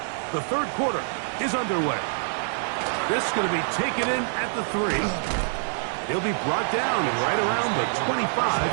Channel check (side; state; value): left; silent; digital silence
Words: The third quarter is underway. This is going to be taken in at the 3. He'll be brought down right around the